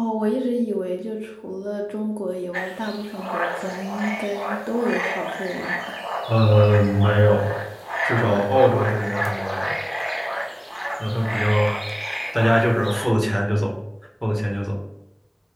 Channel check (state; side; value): identical; both; correlation 1.00